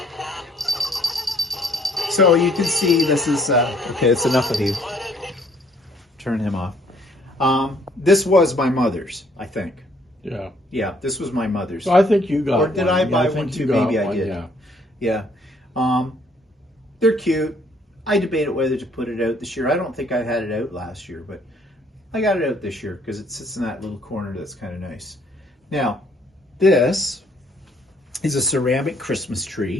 so you can see this is, okay, it's enough of you. Turn him off. This was my mother's, I think. Yeah. Yeah, this was my mother's. So I think you got Or did one. I buy think one you too? got Maybe I one, did. Yeah. Yeah. They're cute. I debated whether to put it out this year. I don't think I had it out last year, but I got it out this year because it sits in that little corner that's kind of nice. Now, this is a ceramic Christmas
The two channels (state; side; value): normal; both; correlation 0.63